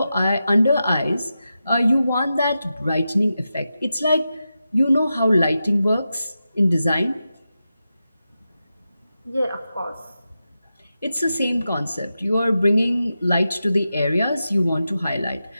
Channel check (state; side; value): inverted; both; correlation -0.90